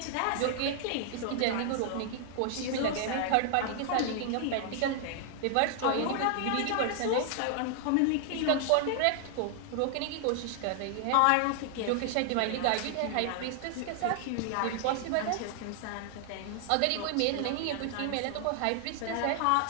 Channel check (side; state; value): both; different; correlation 0.00